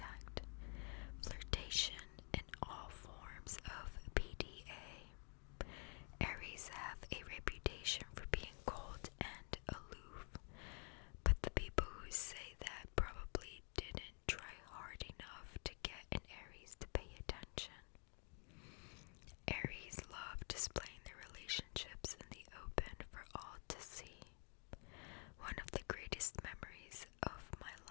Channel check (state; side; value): quieter; right; 38.2 dB